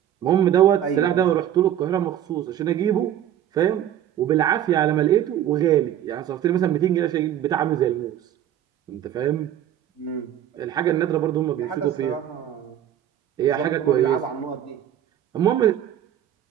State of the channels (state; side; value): quieter; left; 11.0 dB